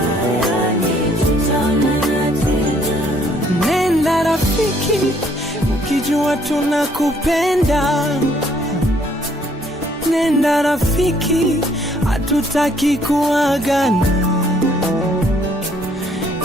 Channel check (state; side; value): normal; both; correlation 0.64